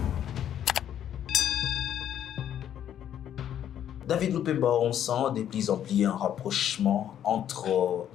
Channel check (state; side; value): quieter; right; 10.2 dB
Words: David Lupemba, on sent de plus en plus un rapprochement entre